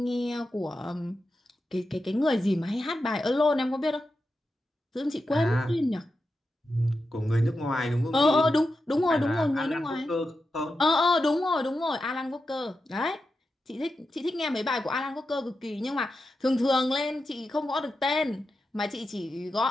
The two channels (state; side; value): normal; both; correlation 0.89